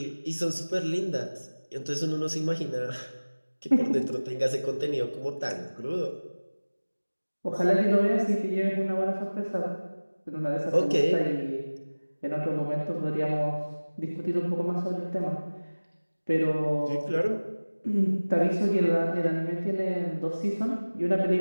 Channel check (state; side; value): inverted; both; correlation -1.00